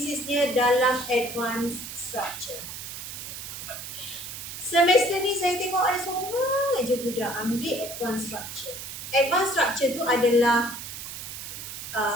dalam advanced structure. Semester ni saya tengok ada seorang aja budak ambil advanced structure. Advanced structure tu adalah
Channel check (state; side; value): noise; right; hiss, 9 dB below the sound